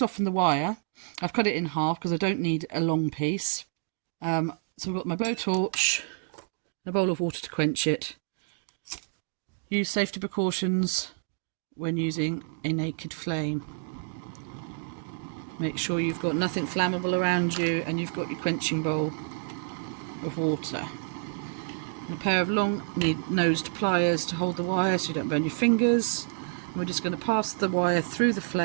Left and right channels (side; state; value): left; silent; 59 dB below the other